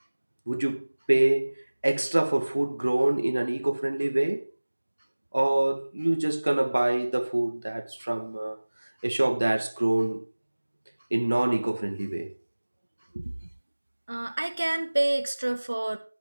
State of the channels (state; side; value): inverted; both; correlation -1.00